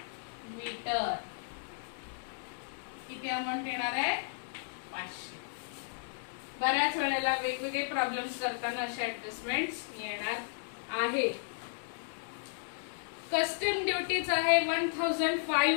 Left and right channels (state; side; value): silent; right; digital silence